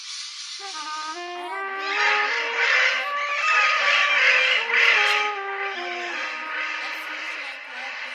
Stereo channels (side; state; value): both; identical; correlation 1.00